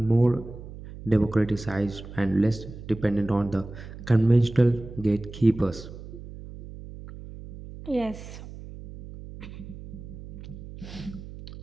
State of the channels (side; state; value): right; noise; hum, 14 dB below the sound